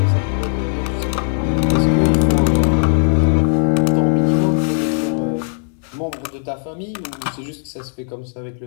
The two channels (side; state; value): right; silent; 64 dB below the other